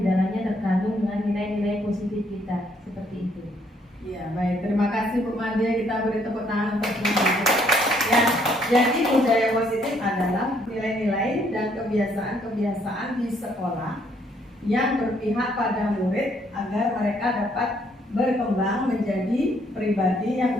terkandung dengan nilai-nilai positif kita, seperti itu. Ya, baik. Terima kasih Bu Made. Kita beri tepuk tangan untuk Bu Made. Ya, jadi budaya positif adalah nilai-nilai dan kebiasaan-kebiasaan di sekolah yang berpihak pada murid agar mereka dapat berkembang menjadi pribadi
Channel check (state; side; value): normal; both; correlation 0.68